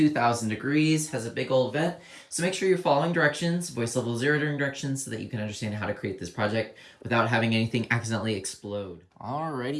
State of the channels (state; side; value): identical; both; correlation 1.00